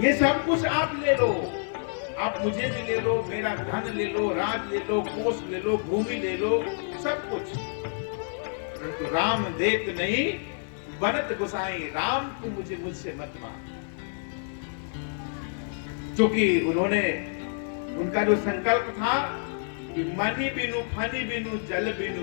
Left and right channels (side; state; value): right; silent; 56 dB below the other